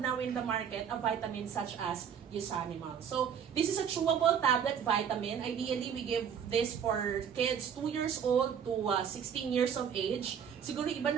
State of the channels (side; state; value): left; quieter; 7.9 dB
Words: now in the market a vitamin such as Usanimals. So this is a chewable tablet vitamin. Ideally, we give this for kids 2 years old to 16 years of age. Siguro iba